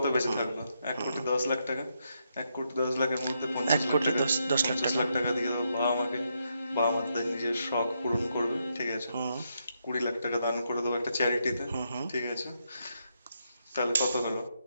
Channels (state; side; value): inverted; both; correlation -0.80